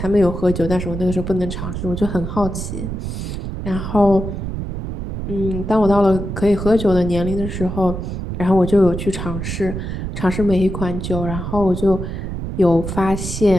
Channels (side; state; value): right; noise; rumble, 5 dB below the sound